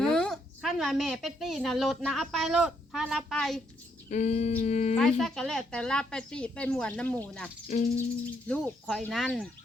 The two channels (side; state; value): both; normal; correlation 0.74